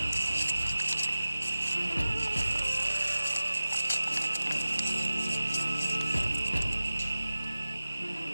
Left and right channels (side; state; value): both; inverted; correlation -0.95